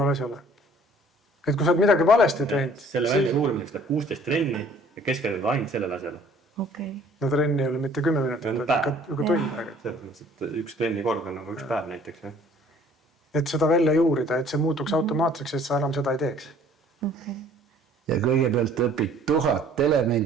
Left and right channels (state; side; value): normal; both; correlation 0.55